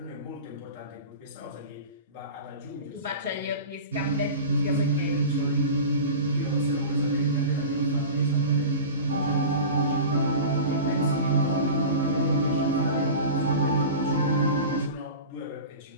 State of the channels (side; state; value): both; inverted; correlation -0.33